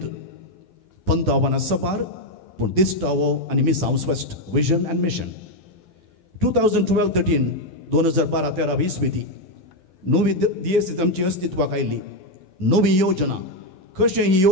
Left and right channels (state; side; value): late; right; 11 ms